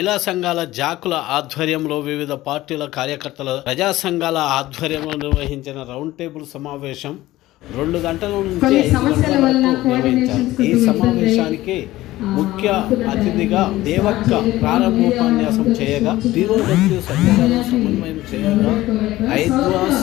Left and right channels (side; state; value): right; quieter; 16.6 dB